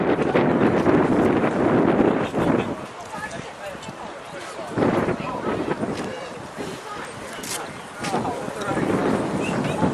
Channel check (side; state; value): both; identical; correlation 1.00